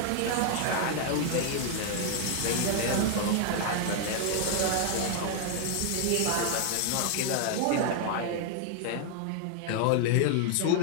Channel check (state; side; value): different; both; correlation 0.00